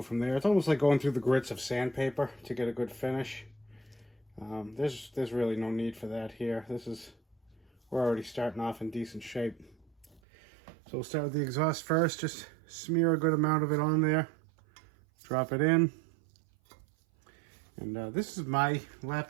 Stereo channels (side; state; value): left; drops out; at 10.2 s